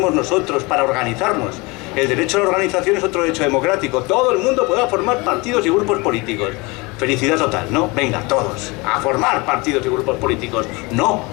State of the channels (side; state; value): right; quieter; 25.8 dB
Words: nosotros para organizarnos? El derecho a la organización es otro derecho democrático. Todo el mundo podrá formar partidos y grupos políticos. Felicidad total, ¿no? Venga, todos, a formar partidos y grupos políticos. No,